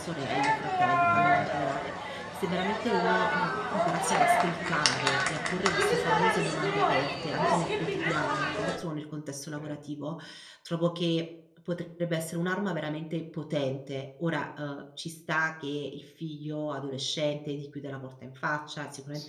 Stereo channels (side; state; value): both; identical; correlation 1.00